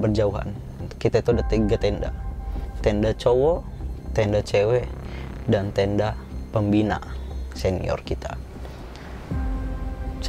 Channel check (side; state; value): both; identical; correlation 1.00